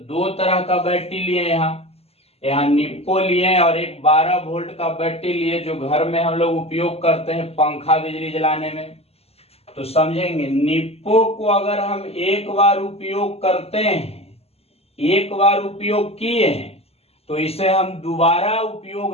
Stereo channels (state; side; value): late; right; 0.29 ms